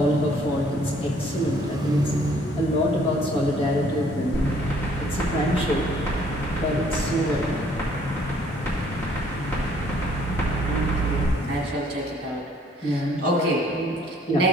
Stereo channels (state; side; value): normal; both; correlation 0.61